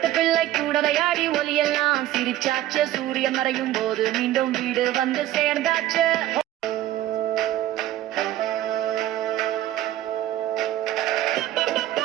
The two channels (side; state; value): left; quieter; 13.8 dB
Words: பிள்ளை கூட விளையாடி ஒலியெல்லாம் சிரிச்சாச்சு, சூரியன் மறையும் போது மீண்டும் வீடு வந்து சேர்ந்தாச்சு.